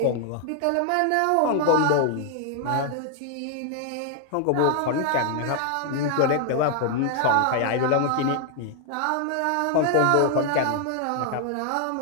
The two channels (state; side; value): different; both; correlation 0.00